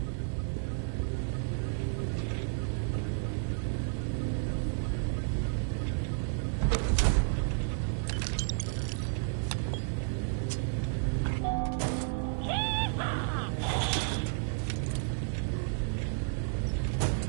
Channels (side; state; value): left; silent; 57 dB below the other